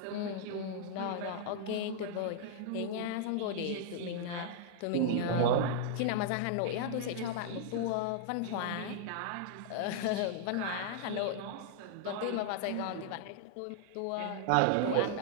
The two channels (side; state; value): both; different; correlation -0.01